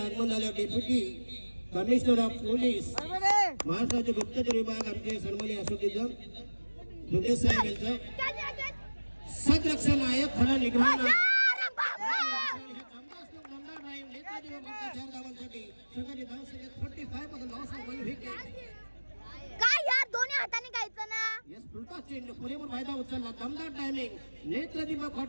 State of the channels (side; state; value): both; inverted; correlation -1.00